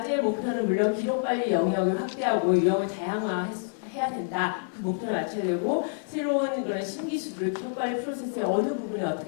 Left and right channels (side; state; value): right; silent; digital silence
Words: 목표는 물론 기록관리 영역을 확대하고 유형을 다양화해야 된다. 그 목표를 맞춰야 되고 새로운 그런 신기술을 기록관리 프로세스의 어느 부분에